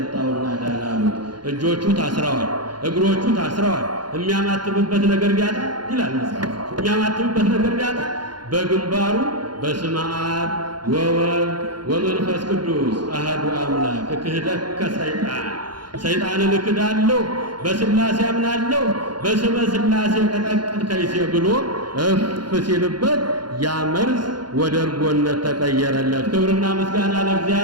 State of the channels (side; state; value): left; late; 0.71 ms